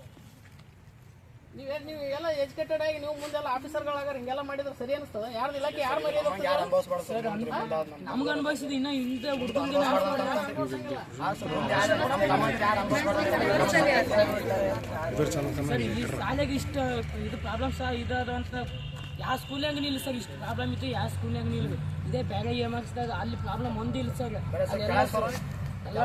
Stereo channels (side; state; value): both; identical; correlation 1.00